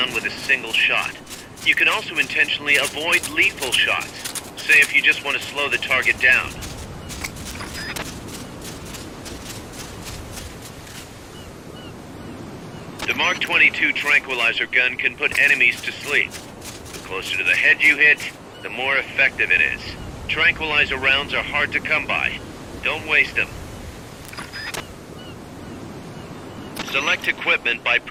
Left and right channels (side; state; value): both; identical; correlation 1.00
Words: with a single shot. You can also intentionally avoid lethal shots, say if you just want to slow the target down. The Mark 22 tranquilizer gun can put enemies to sleep. The closer to the head you hit, the more effective it is. Tranquilizer rounds are hard to come by. Don't waste them. Select equipment by